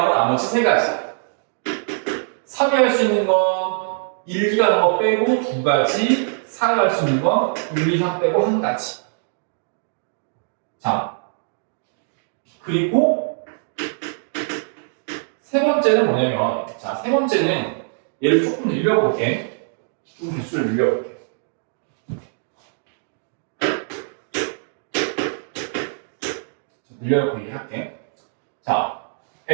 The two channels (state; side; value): silent; left; digital silence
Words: 나머지 3가지. 3이 할 수 있는 건 1, 2가 하는 거 빼고 2가지. 4가 할 수 있는 건 1, 2, 3 빼고 1가지. 자, 그리고 세 번째는 뭐냐면 자, 세 번째는 얘를 조금 늘려볼게. 좀 개수를 늘려볼게. 늘려놓고 얘기할게. 자,